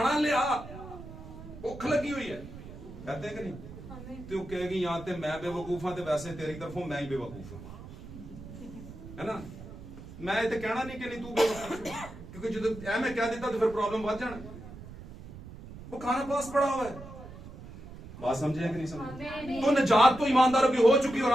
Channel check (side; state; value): right; noise; rumble, 14 dB below the sound